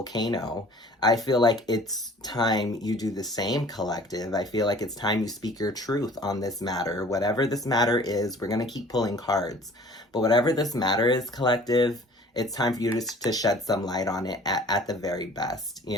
I feel like it's time you do the same, collective. I feel like it's time you speak your truth on this matter. Whatever this matter is, we're going to keep pulling cards. But whatever this matter is, collective, it's time for you to shed some light on it at the very best,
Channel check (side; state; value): both; normal; correlation 0.49